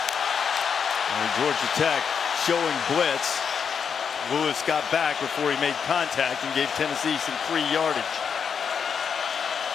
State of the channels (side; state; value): right; quieter; 6.8 dB